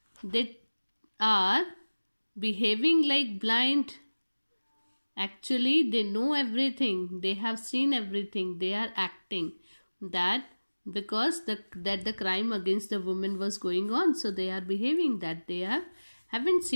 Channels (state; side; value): inverted; both; correlation -1.00